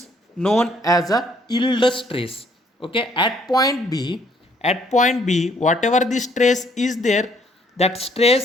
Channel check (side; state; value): both; normal; correlation 0.65